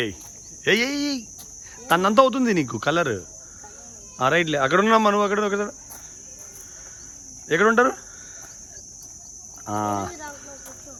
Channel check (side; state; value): both; identical; correlation 1.00